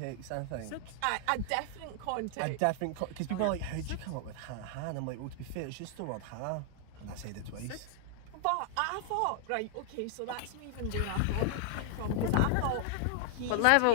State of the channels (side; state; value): both; different; correlation 0.00